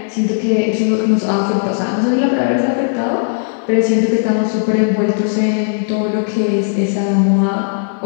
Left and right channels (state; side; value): silent; right; 63 dB below the other